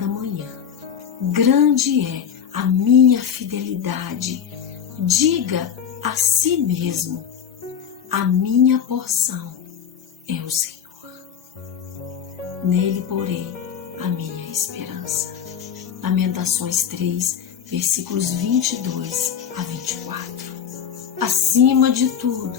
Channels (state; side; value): quieter; right; 8.1 dB